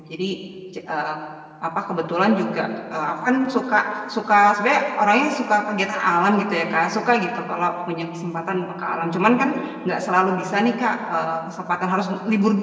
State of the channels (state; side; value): identical; both; correlation 1.00